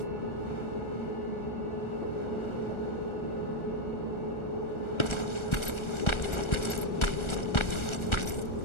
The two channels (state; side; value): late; right; 1.4 ms